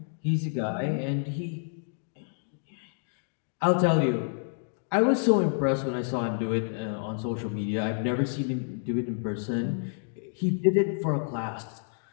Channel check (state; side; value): silent; right; digital silence